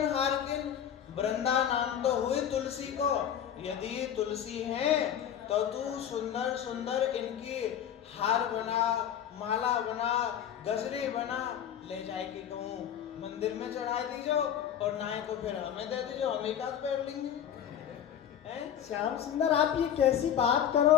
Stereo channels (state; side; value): quieter; right; 9.5 dB